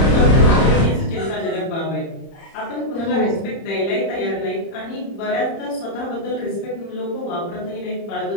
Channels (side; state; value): right; late; 30 ms